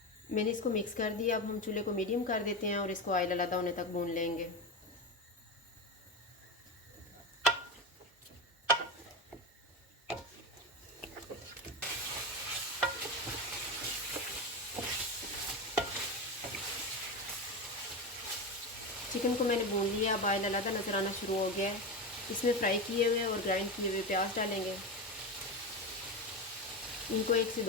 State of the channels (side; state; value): both; normal; correlation 0.18